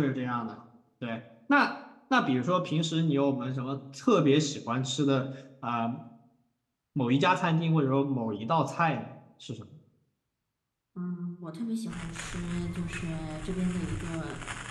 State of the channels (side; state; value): both; identical; correlation 1.00